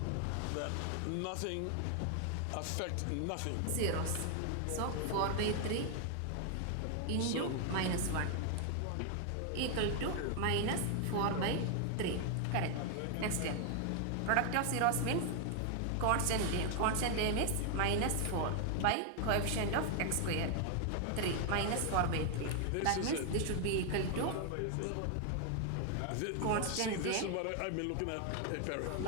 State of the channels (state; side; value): different; both; correlation 0.00